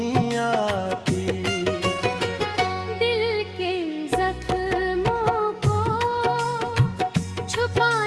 आती। दिल के जख्मों को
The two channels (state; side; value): identical; both; correlation 1.00